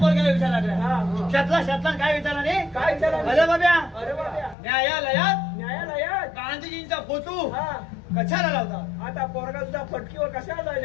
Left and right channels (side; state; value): right; drops out; at 4.5 s